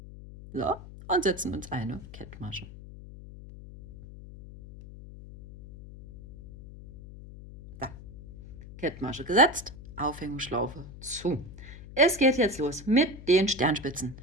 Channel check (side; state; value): left; noise; hum, 15 dB below the sound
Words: So, und setzen uns eine Kettmasche. So, Kettmasche gesetzt, Aufhängungsschlaufe zu. Es geht jetzt los mit den Sternspitzen.